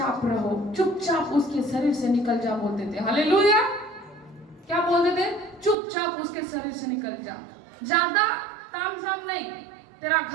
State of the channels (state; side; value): drops out; left; at 5.8 s